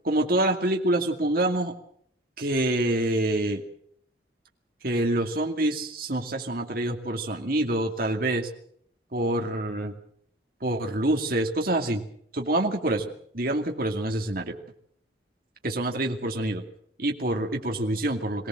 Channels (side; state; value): both; normal; correlation 0.40